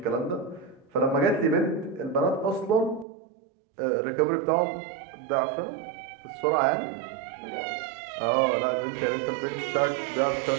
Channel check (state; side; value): drops out; left; at 3.1 s